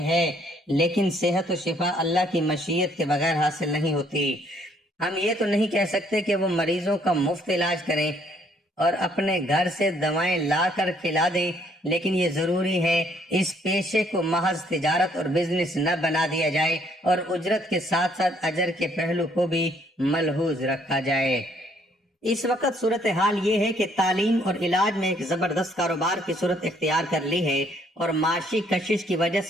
ہے، لیکن صحت و شفا اللہ کی مشیت کے بغیر حاصل نہیں ہوتی۔ ہم یہ تو نہیں کہہ سکتے کہ وہ مریضوں کا مفت علاج کریں اور اپنے گھر سے دوائیں لا کر کھلا دیں، لیکن یہ ضروری ہے اس پیشے کو محض تجارت اور بزنس نہ بنا دیا جائے اور اجرت کے ساتھ ساتھ اجر کے پہلو کو بھی ملحوظ رکھا جائے۔ اس وقت صورتحال یہ ہے کہ تعلیم اور علاج میں ایک زبردست کاروبار کی صورت اختیار کر لی ہے اور معاشی کشش کی وجہ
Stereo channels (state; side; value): normal; both; correlation 0.65